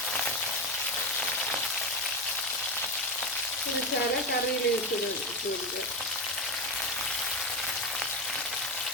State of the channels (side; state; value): both; normal; correlation 0.16